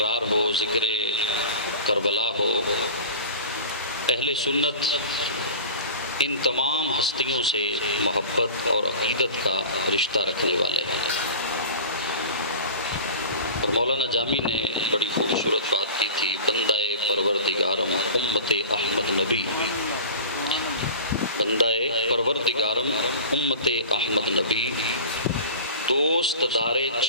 ہو، ذکر کربلا ہو، اہل سنت ان تمام ہستیوں سے محبت اور عقیدت کا رشتہ رکھنے والے ہیں۔ اور مولانا جامی نے بڑی خوبصورت بات کی تھی، بندہ پروردگارم امت احمد نبی، بندہ پروردگارم امت احمد نبی، دوست دار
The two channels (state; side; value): inverted; both; correlation -0.35